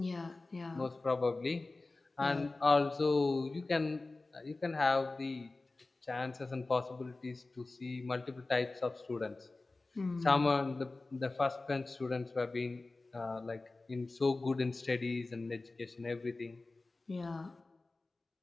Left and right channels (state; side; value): quieter; right; 3.3 dB